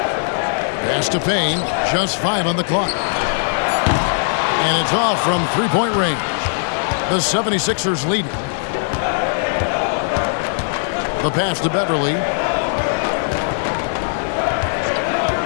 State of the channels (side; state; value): right; silent; 56 dB below the other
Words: Pass to Payne, just 5 on the clock. And it's off from three-point range. The 76ers lead. The pass to Beverly.